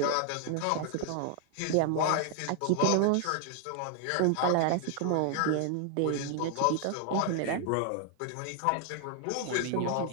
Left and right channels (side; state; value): both; different; correlation 0.00